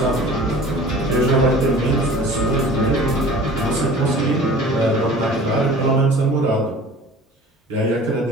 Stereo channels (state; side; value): normal; both; correlation 0.44